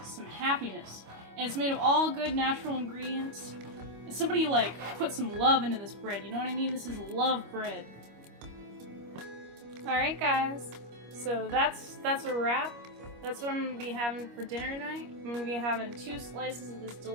some happiness. And it's made of all good natural ingredients. And somebody like put some love into this bread, you know what I mean? This is love bread. Alright guys, so that's a wrap. That's what I'm gonna be having for dinner tonight. I'm gonna be having 2 slices of this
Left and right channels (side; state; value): left; late; 25 ms